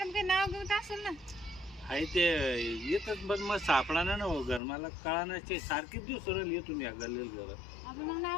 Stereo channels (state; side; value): drops out; right; at 4.6 s